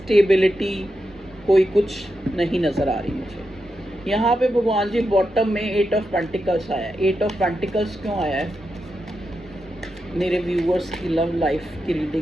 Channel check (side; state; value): both; normal; correlation 0.87